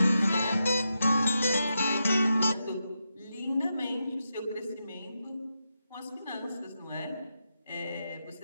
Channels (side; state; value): both; inverted; correlation -0.87